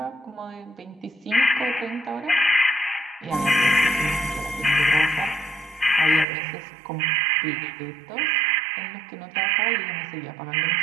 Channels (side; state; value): left; drops out; at 6.2 s